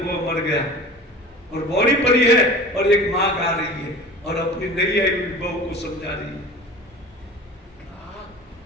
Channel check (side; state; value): both; normal; correlation 0.39